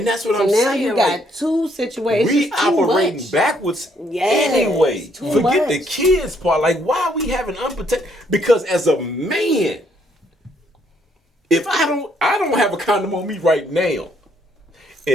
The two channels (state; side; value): normal; both; correlation 0.69